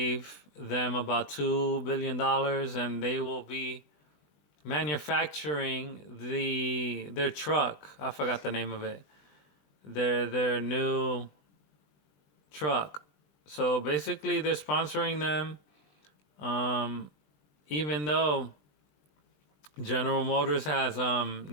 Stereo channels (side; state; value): right; late; 20 ms